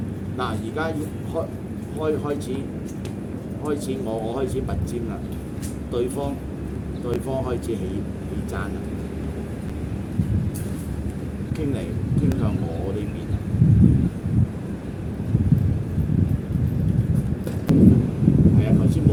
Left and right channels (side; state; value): both; identical; correlation 1.00